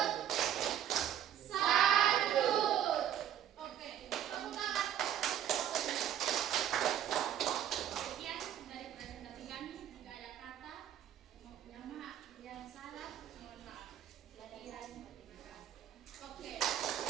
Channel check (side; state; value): left; quieter; 10.3 dB